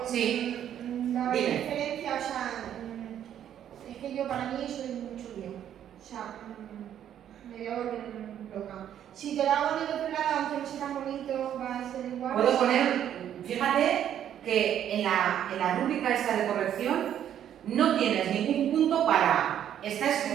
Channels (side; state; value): left; quieter; 10.2 dB